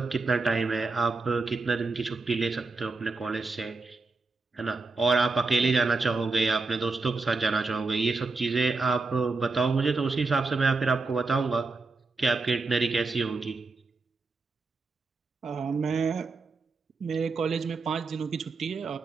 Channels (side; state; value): left; quieter; 3.9 dB